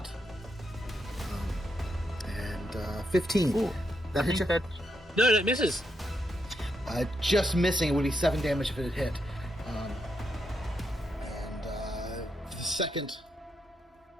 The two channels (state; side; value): normal; both; correlation 0.81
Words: and 15. Ooh, that hits you? No, it misses. Just missing. It would be 7 damage if it had hit. The second